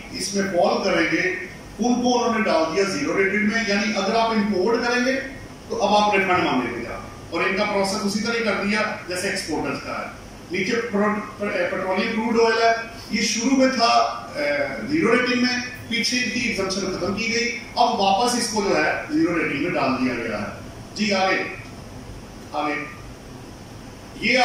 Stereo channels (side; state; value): both; identical; correlation 1.00